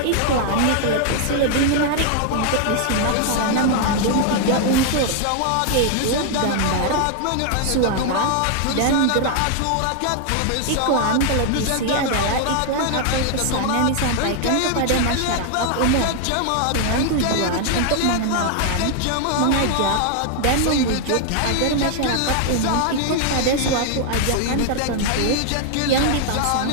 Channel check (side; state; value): both; different; correlation 0.00